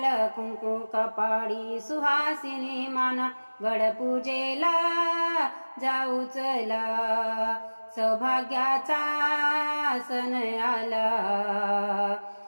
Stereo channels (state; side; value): inverted; both; correlation -1.00